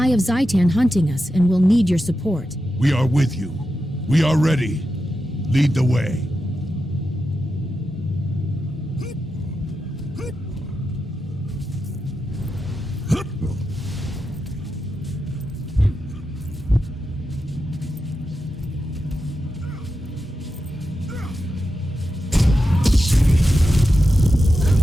of Zhaitan hunting us, and we'll need your support. We are with you. We are ready. Lead the way.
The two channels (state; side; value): normal; both; correlation 0.89